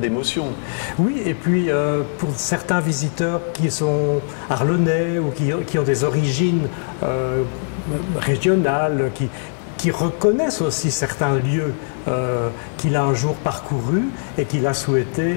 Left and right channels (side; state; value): right; silent; 56 dB below the other